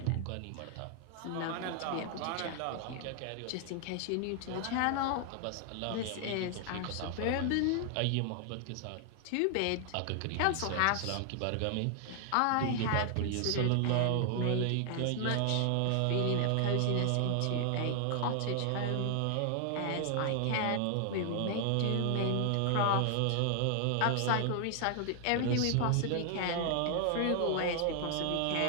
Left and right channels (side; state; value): both; different; correlation 0.00